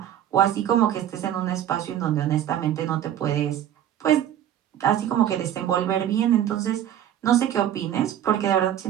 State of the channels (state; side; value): quieter; left; 10.9 dB